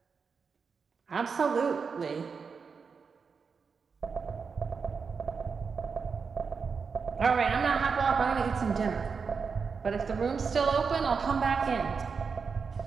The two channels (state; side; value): quieter; left; 5.5 dB